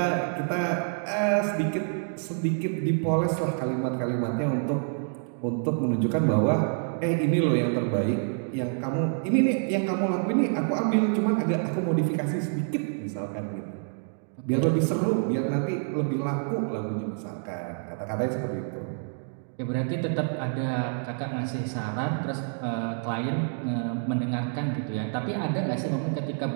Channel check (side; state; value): left; silent; 60 dB below the other